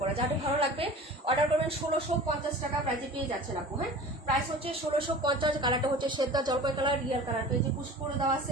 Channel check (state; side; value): normal; both; correlation 0.39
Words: যাদের ভালো লাগবে অর্ডার করবেন। 1650 টাকা প্রাইজে পেয়ে যাচ্ছেন আপু। হ্যাঁ, প্রাইস হচ্ছে 1650। কালারটা হচ্ছে সেদ্ধা জলপাই কালার, রিয়াল কালার। পেজে পুশ করে দেওয়া আছে,